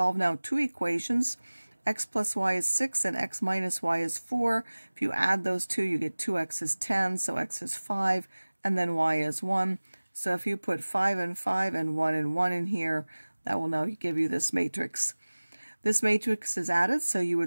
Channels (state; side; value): inverted; both; correlation -1.00